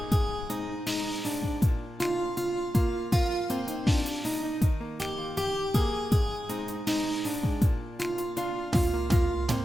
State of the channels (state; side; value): normal; both; correlation 0.91